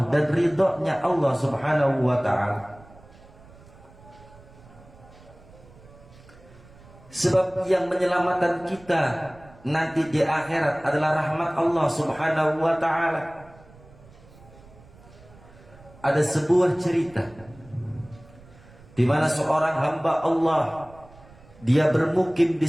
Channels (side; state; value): right; noise; rumble, 23 dB below the sound